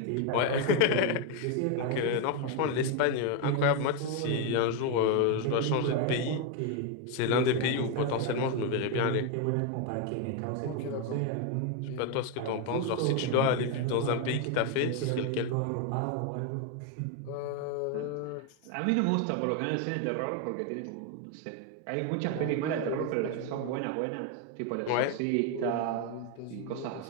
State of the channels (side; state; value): both; different; correlation 0.01